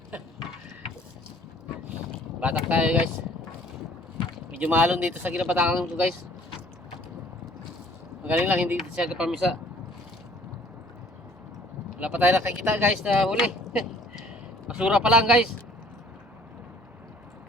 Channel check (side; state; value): both; normal; correlation 0.55